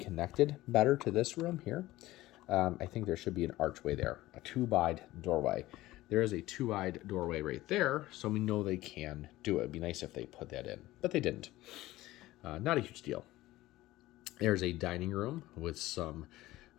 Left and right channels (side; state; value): right; quieter; 17.0 dB